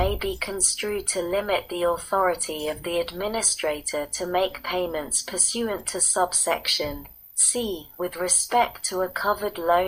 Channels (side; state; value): both; identical; correlation 1.00